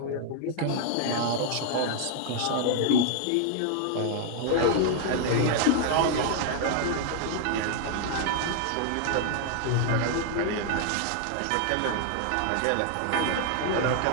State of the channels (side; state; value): both; different; correlation 0.00